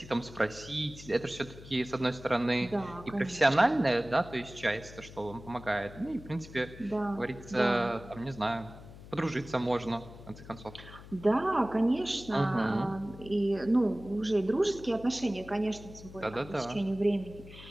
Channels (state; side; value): noise; left; hum, 17 dB below the sound